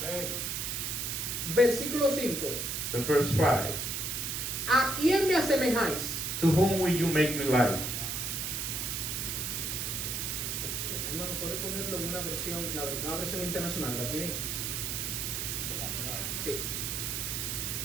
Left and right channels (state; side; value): noise; right; hiss, 2 dB below the sound